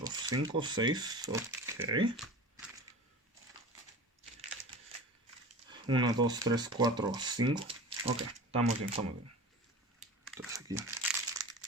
5, 6. Ok. 1, 2, 3, 4, 5. Ok, estamos bien, estamos bien. Entonces aquí.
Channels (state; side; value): normal; both; correlation 0.35